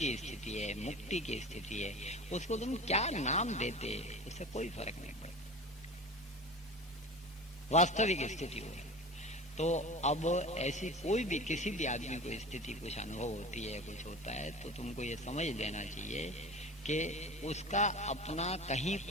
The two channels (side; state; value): both; normal; correlation 0.34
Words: स्थिति है, मुक्ति की स्थिति है, उसको तुम क्या नाम देते उससे कोई फर्क नहीं पड़ता, वास्तविक स्थिति हो। तो अब ऐसी कोई भी किसी भी आदमी को स्थिति कुछ अनुभव होती है, कुछ होता है, तो तुमको ये समझ लेना चाहिए कि उसका अपना कहीं